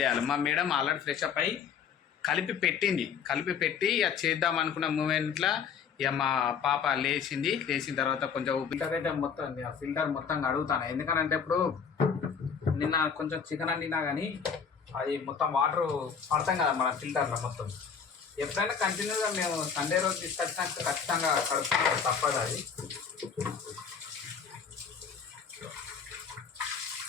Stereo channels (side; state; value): right; quieter; 6.7 dB